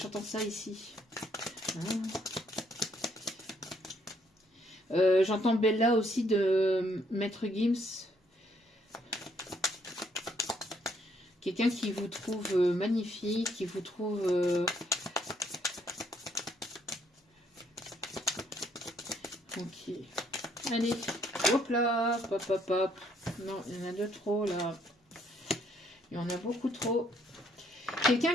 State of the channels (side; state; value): both; normal; correlation 0.69